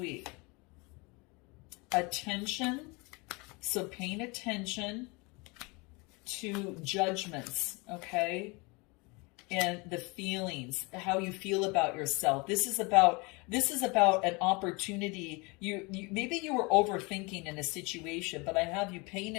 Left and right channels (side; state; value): right; quieter; 27.8 dB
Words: Attention, so paying attention to judgments, okay, and the feelings, how you feel about yourself. This is about an opportunity. You maybe you were overthinking in a situation, but I have you paying